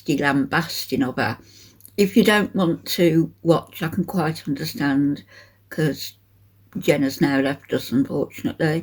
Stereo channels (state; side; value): identical; both; correlation 1.00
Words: lambasting of her. If you don't want to watch, I can quite understand because Jen has now left us,